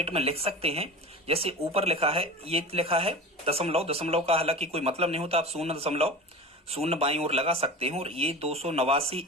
में लिख सकते हैं, जैसे ऊपर लिखा है, ये लिखा है दशमलव, दशमलव का हालांकि कोई मतलब नहीं होता, आप 0.0 बाईं ओर लगा सकते हैं, और ये 289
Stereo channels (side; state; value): both; normal; correlation 0.32